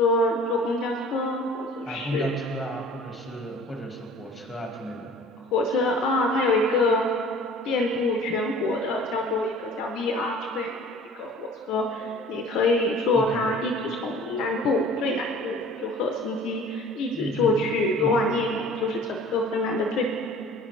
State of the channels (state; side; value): normal; both; correlation 0.46